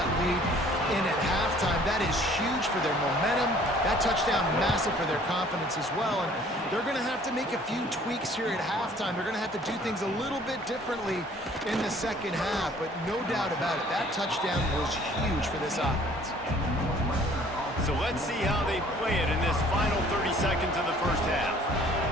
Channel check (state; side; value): normal; both; correlation 0.55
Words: lead in at halftime. That is huge for their momentum. That touchdown, massive for their confidence as well. And they're going to have to make a few tweaks here at halftime. They're going to have to do things a little bit differently in the second half. But no doubt about it, that touchdown was huge for this offense. So let's see how they play it in this final 30 seconds of the first half.